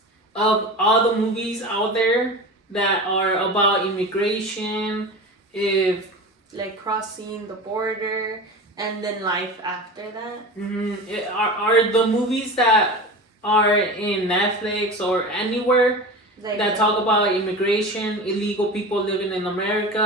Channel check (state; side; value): normal; both; correlation 0.30